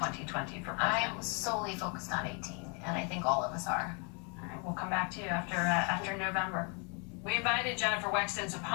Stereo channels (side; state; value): right; quieter; 34.2 dB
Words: for president? I'm solely focused on 18, and I think all of us are. All right, we'll come back to you after November. We invited Jenifer Wexton's